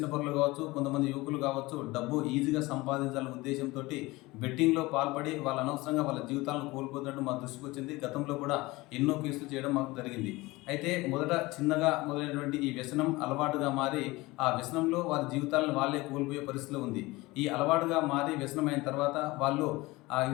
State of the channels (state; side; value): quieter; right; 21.2 dB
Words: కావచ్చు, కొంతమంది యువకులు కావచ్చు, డబ్బు ఈజీగా సంపాదించాలనే ఉద్దేశంతో బెట్టింగ్లో పాల్పడి వాళ్ళు అనవసరంగా వాళ్ళ జీవితాలను కోల్పోతున్నట్టు మా దృష్టికి వచ్చింది. గతంలో కూడా ఎన్నో కేసులు చేయడం మాకు జరిగింది. అయితే మొదట చిన్నగా మొదలైనటువంటి ఈ వ్యసనం అలవాటుగా మారి ఆ వ్యసనంలో వారి జీవితాలను వాళ్ళే కోల్పోయే పరిస్థితిలో ఉంది. ఈ అలవాటుగా మారి వ్యసనమైన తర్వాత వాళ్ళు ఆ